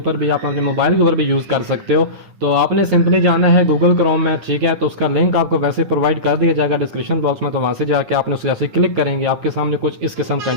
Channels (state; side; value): late; left; 9.7 ms